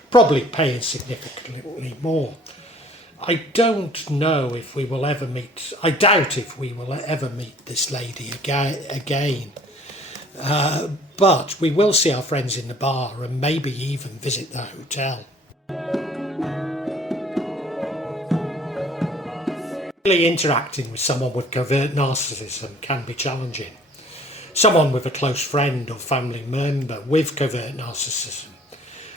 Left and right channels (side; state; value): both; normal; correlation 0.54